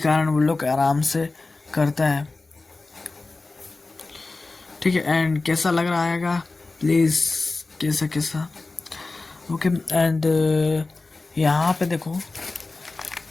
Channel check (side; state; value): right; quieter; 3.5 dB